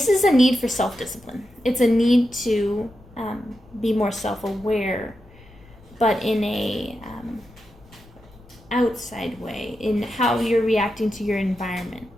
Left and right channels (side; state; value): left; noise; rumble, 24 dB below the sound